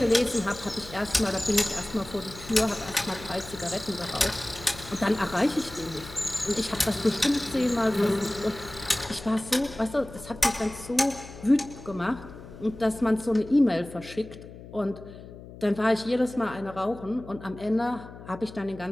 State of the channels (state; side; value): noise; left; hum, 16 dB below the sound